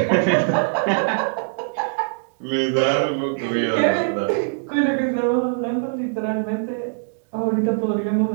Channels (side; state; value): left; silent; digital silence